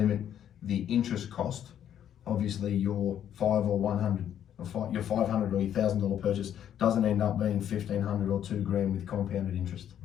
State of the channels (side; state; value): right; quieter; 10.0 dB